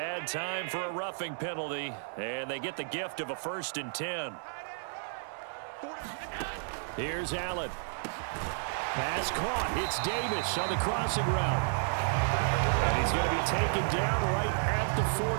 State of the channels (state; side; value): silent; left; 56 dB below the other